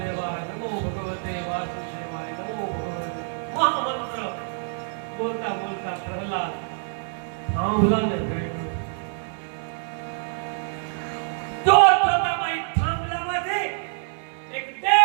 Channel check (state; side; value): silent; left; 58 dB below the other